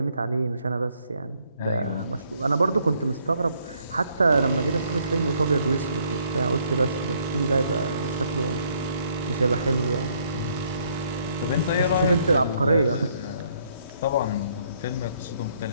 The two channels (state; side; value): inverted; both; correlation -0.68